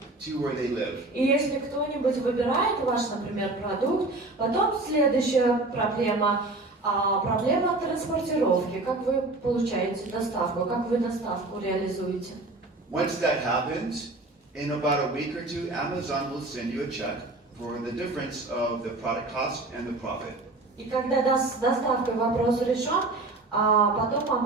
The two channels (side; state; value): left; quieter; 3.0 dB